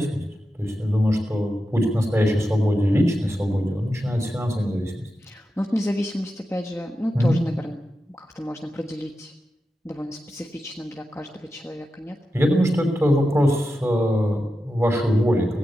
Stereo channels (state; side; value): normal; both; correlation 0.90